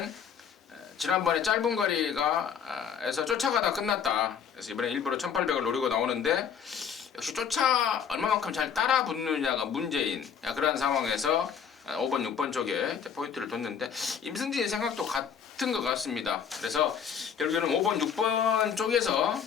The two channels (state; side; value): quieter; right; 7.5 dB